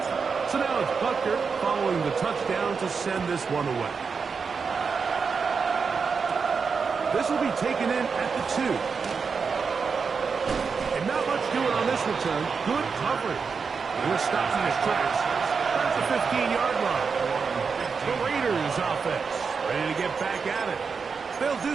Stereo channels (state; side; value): quieter; left; 5.4 dB